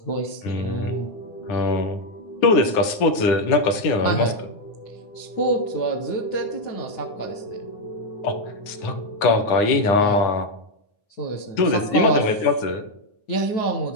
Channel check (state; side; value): late; right; 9.6 ms